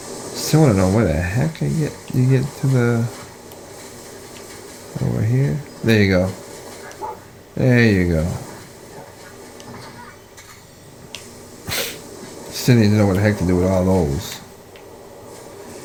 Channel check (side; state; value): both; identical; correlation 1.00